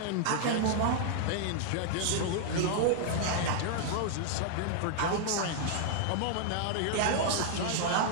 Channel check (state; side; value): different; both; correlation 0.00